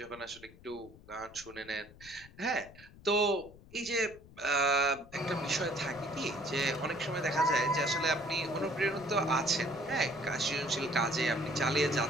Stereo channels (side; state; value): left; noise; rumble, 21 dB below the sound